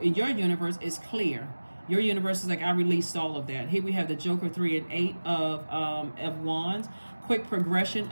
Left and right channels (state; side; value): inverted; both; correlation -1.00